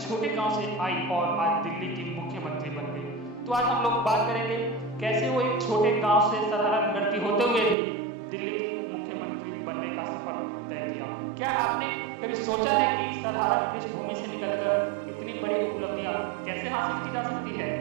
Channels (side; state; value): left; drops out; at 7.8 s